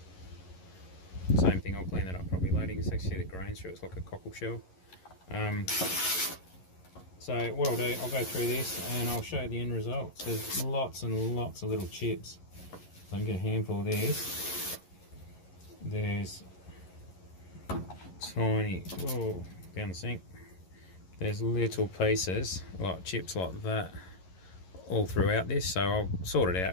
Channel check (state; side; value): late; right; 11 ms